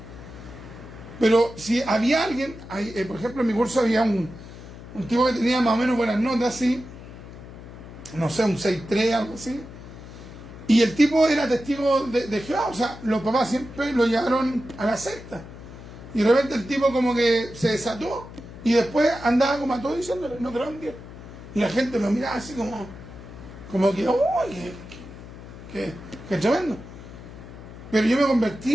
Pero si había alguien, por ejemplo, en mi curso había un tipo que tenía más o menos buenas notas, así, no sé, un 6.3, algo así. Y el tipo era testigo de Jehová, o sea, los papás siempre lo llevaron a la secta. Y de repente el tipo como que se desató y después andaba como a todos diciéndole, no creo en Dios. Y la gente lo miraba así como que, ¡uy! ¡Qué tremendo! Pero yo me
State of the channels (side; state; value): left; noise; hum, 15 dB below the sound